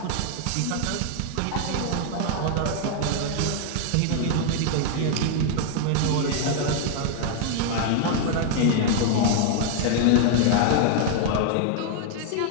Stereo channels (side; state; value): both; different; correlation 0.00